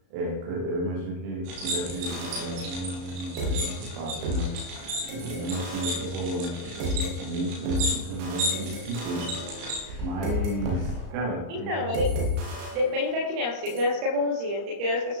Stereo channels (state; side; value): late; left; 34 ms